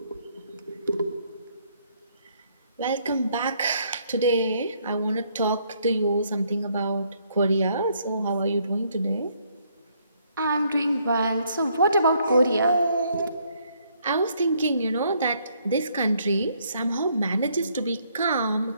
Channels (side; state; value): both; inverted; correlation -0.69